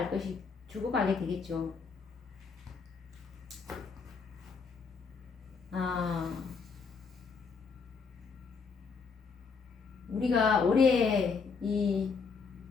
되겠죠. 우리가 올해 이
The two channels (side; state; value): right; quieter; 5.2 dB